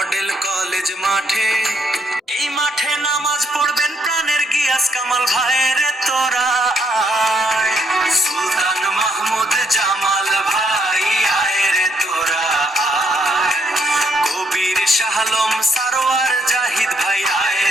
কলেজ মাঠে, এই মাঠে নামাজ পড়বেন প্রাণের গিয়াস কামাল ভাইয়ের তোরা আয়। সুলতান মাহমুদ জামাল ভাই আয় রে তোরা আয়। কবির শাহলম সারোয়ার জাহিদ ভাই আয়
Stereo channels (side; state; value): both; normal; correlation 0.72